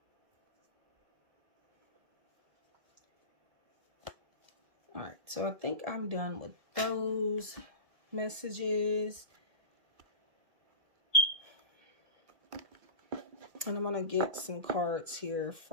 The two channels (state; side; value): late; left; 1.7 ms